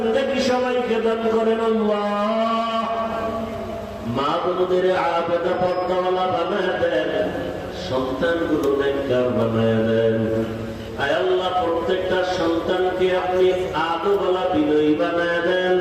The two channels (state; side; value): identical; both; correlation 1.00